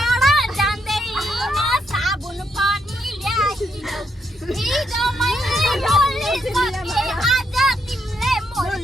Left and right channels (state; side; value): normal; both; correlation 0.77